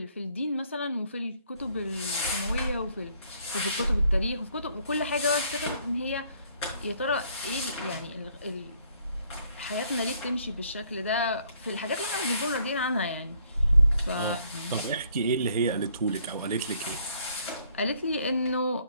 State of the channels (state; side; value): inverted; both; correlation -0.65